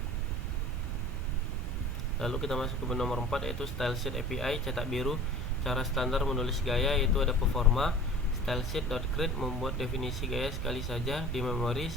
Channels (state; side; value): noise; right; rumble, 8 dB below the sound